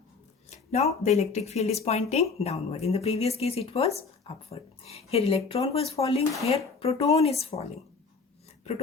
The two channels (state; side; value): quieter; right; 4.6 dB